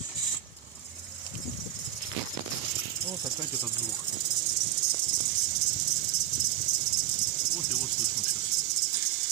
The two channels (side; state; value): left; quieter; 12.1 dB